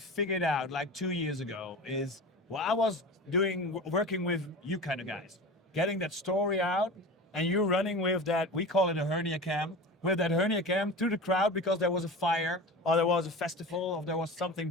out like 2 years ago is, well, I was working with you kind of guys, getting that story out, and you running with that, we call it a hernia cam, with that hernia cam through the crowd because there was a fire, or there was a festival, or there was something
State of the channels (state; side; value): normal; both; correlation 0.32